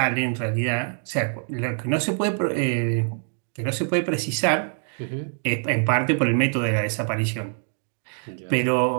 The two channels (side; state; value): left; silent; digital silence